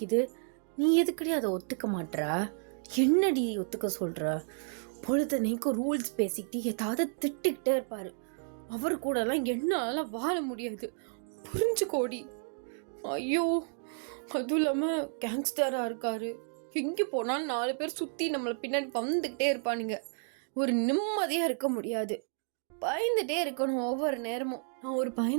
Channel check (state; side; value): silent; left; 57 dB below the other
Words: நீ எதுக்கடி அதை ஒத்துக்க மாட்டா? என்னடி ஒத்துக்க சொல்கிற? பொழுதனைக்கும் ரூல்ஸ் பேசிக்கிட்டு ஏதாவது திட்டிக்கிட்டே இருப்பார். அவர் கூடலாம் என்னால் வாழ முடியாது, புரிஞ்சுக்கோடி. ஐயோ, அதுவும் இல்லாமல் கேங்ஸ்டராக இருக்காரு. எங்கே போனாலும் 4 பேர் சுற்றி நம்மளை பின்னாடி வந்துக்கிட்டே இருப்பானுங்க. ஒரு நிம்மதியாக இருக்க முடியாது, பயந்துட்டே இருக்கணும் ஒவ்வொரு நேரமும். நான் ஒரு